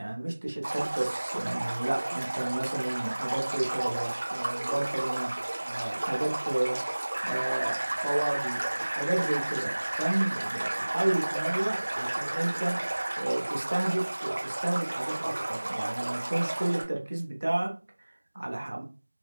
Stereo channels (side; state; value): both; inverted; correlation -1.00